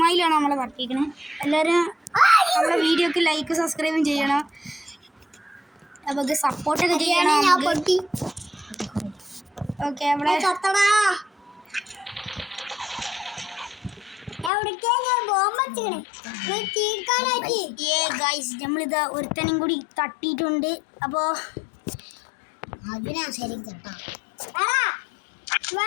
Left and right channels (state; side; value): drops out; right; at 14.5 s